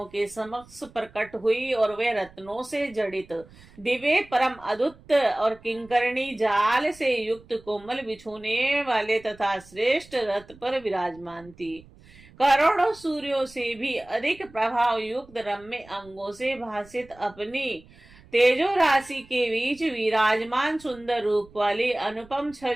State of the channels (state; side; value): noise; right; rumble, 24 dB below the sound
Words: के समक्ष प्रकट हुई और वे रत्नों से जड़ित दिव्य परम अद्भुत और किंकरणी जाल से युक्त कोमल बिछोने वाले तथा श्रेष्ठ रथ पर विराजमान थी। करोड़ों सूर्यों से भी अधिक प्रभाव युक्त रम्य अंगों से भासित अपनी तेजो राशि के बीच विराजमान सुंदर रूप वाली अनुपम